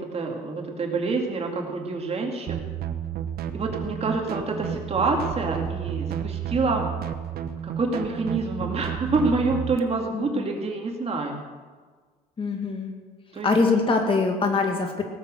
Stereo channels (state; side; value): normal; both; correlation 0.54